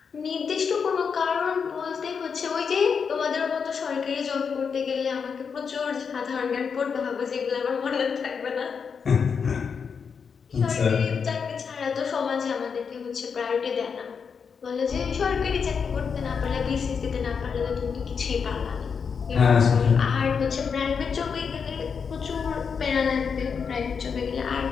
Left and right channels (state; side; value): quieter; right; 6.2 dB